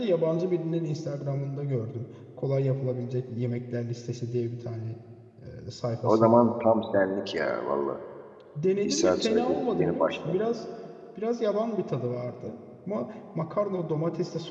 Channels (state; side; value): identical; both; correlation 1.00